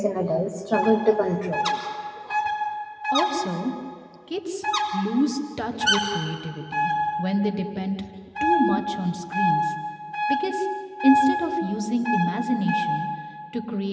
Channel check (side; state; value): both; identical; correlation 1.00